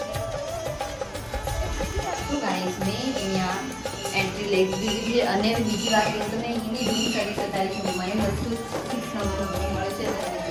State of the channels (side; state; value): both; identical; correlation 1.00